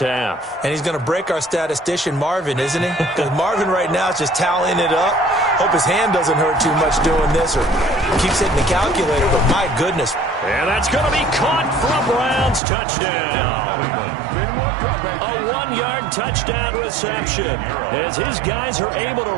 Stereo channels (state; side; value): drops out; left; at 12.6 s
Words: And he's going to break our statistician Marvin, isn't he? Because Marvin right now is just tallying it up. Hope his hand doesn't hurt too much doing this or keeps hitting the calculator, but my goodness. And that's going to be caught for a Browns touchdown. A 1-yard touchdown reception as his guys are able to